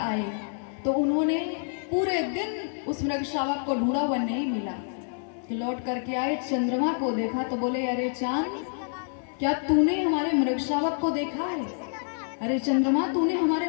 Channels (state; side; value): silent; right; 60 dB below the other